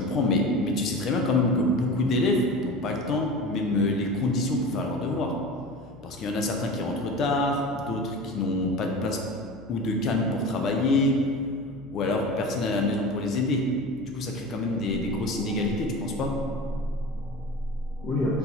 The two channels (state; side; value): noise; left; hum, 22 dB below the sound